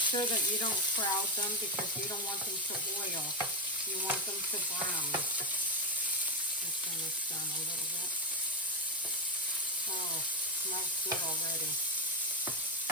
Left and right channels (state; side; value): normal; both; correlation 0.11